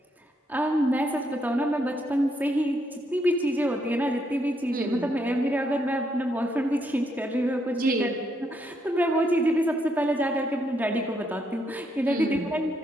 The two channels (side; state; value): both; normal; correlation 0.76